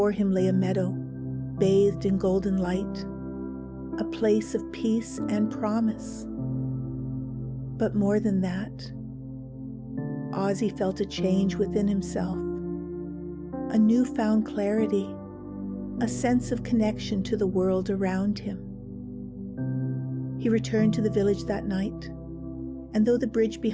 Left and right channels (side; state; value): both; identical; correlation 1.00